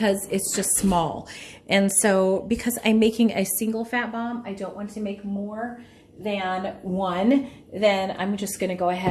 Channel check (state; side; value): identical; both; correlation 1.00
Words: it's just small. And so because I'm making a single fat bomb, I don't want to make more than one, then I'm just going to go